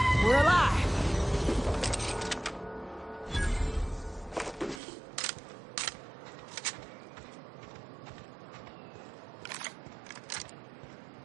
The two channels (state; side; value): drops out; left; at 4.8 s